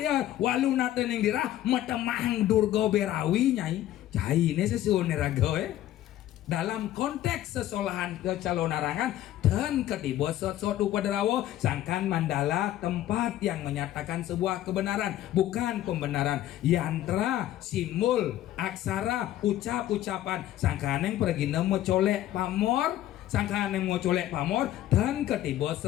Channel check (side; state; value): right; quieter; 13.3 dB